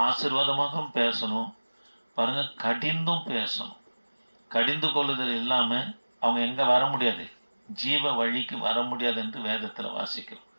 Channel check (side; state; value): both; inverted; correlation -1.00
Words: ஆசீர்வாதமாக பேசணும். பாருங்க, கடிந்தும் பேசணும். கடிந்து கொள்ளுதல் இல்லாமல் அவங்க எங்கே வர முடியாது? ஜீவ வழிக்கு வர முடியாது என்று வேதத்தில் வாசிக்கிறோம்.